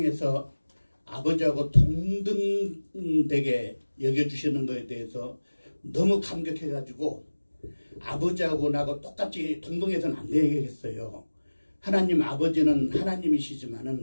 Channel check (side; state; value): both; inverted; correlation -1.00